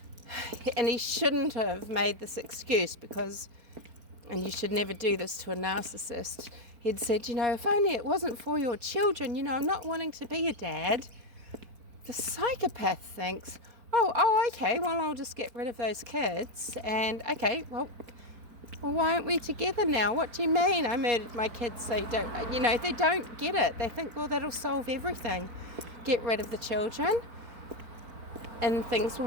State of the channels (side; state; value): left; late; 4.5 ms